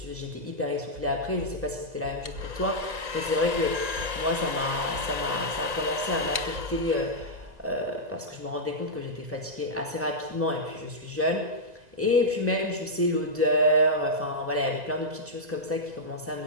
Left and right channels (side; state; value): left; late; 2.0 ms